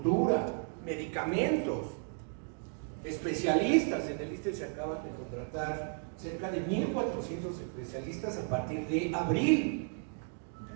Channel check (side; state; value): left; silent; 55 dB below the other